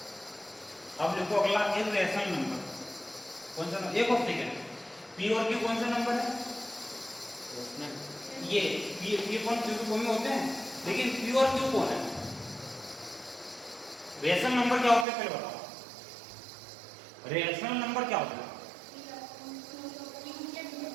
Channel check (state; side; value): drops out; left; at 15.1 s